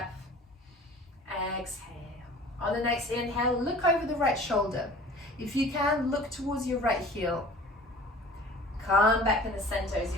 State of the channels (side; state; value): both; normal; correlation 0.44